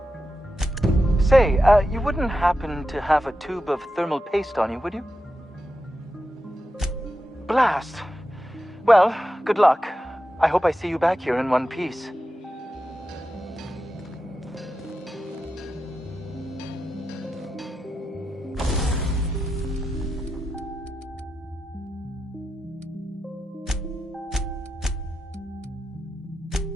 Say, you wouldn't happen to have a tube of thermal paste on you, would you? Blast. Well, good luck. I hope I see you back here in one piece.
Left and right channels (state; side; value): normal; both; correlation 0.90